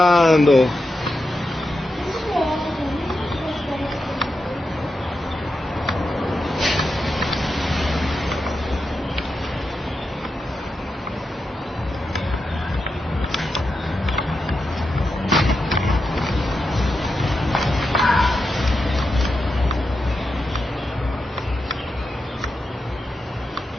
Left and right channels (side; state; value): both; normal; correlation 0.88